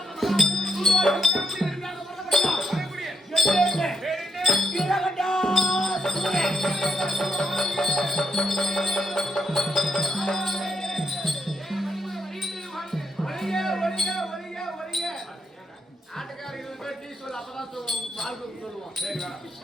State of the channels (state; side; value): normal; both; correlation 0.81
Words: ஆட்டுக்காரங்களுக்கு போய் டீ சொல்லு அப்பதான் பால் சொல்லுவோம்